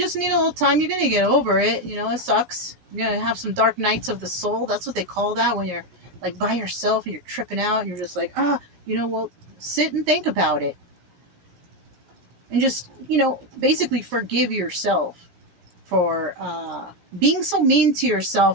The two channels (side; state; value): left; late; 16 ms